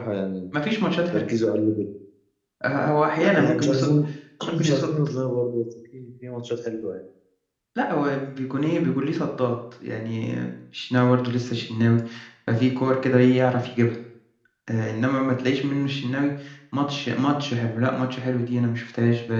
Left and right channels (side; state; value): both; identical; correlation 1.00